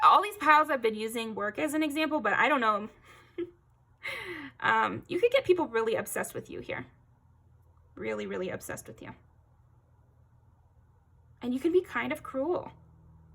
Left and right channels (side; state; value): both; identical; correlation 1.00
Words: all these piles I've been using work as an example, but I don't know. You could get people really obsessed with you here. Really, really obsessed with you. And you can be kind of cruel.